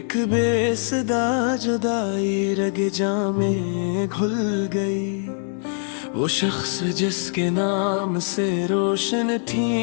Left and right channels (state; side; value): silent; right; 61 dB below the other